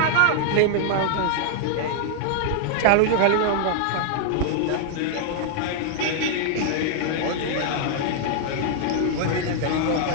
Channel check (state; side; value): different; both; correlation 0.00